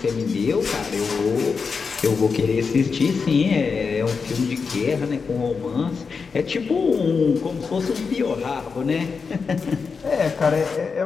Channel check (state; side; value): quieter; right; 5.2 dB